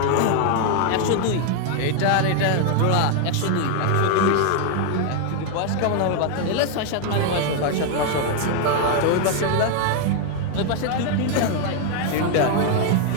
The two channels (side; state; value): both; different; correlation 0.00